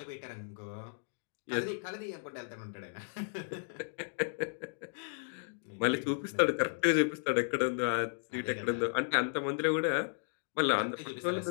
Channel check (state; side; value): silent; right; digital silence